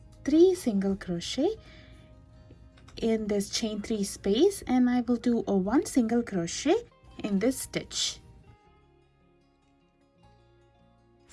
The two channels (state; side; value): identical; both; correlation 1.00